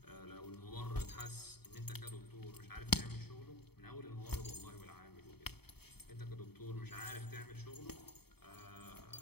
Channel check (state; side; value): late; right; 0.96 ms